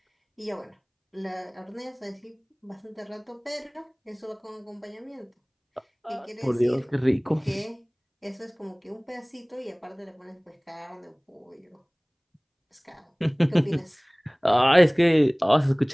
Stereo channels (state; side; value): identical; both; correlation 1.00